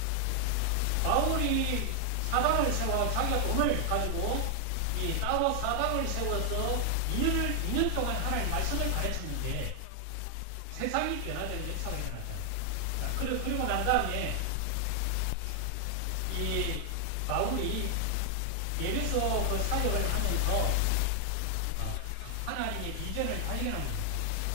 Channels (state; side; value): different; both; correlation 0.00